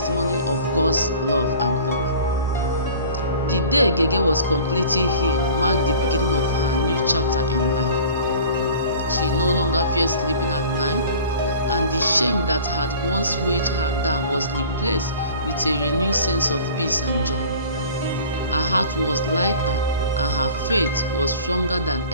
of God's love and power. The day Gege was completely healed marked the beginning of her new chapter in life. She no longer feared sleeping at night, and the shame that had once weighed her down was replaced with a renewed sense of peace and joy. Her heart was lighter, and her faith was stronger than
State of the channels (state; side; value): inverted; both; correlation -0.44